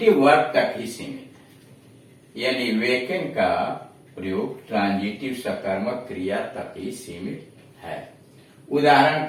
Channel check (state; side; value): identical; both; correlation 1.00